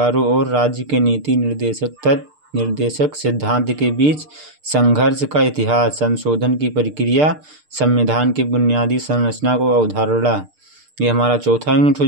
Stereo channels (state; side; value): late; left; 6.7 ms